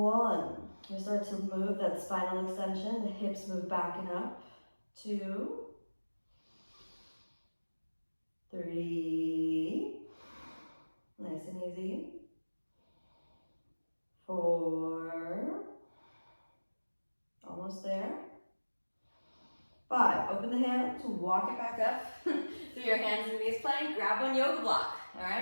We start to move that spinal extension. The hips move back and up. 2. 3. Nice and easy. 4. Almost there. 5, open the hands, walk it back up through your hands and knees plank. Grab one yoga block, all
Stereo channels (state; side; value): inverted; both; correlation -1.00